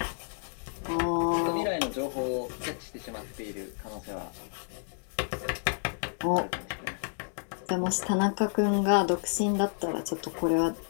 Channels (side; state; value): right; silent; digital silence